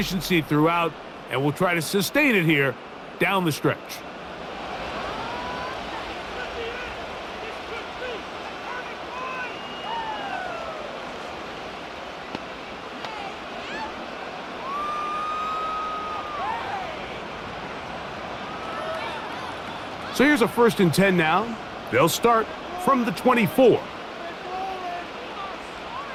throughout, and we'll try to sustain it here down the stretch. So here's a 1st and 10 now. They'll start from the 24.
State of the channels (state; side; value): identical; both; correlation 1.00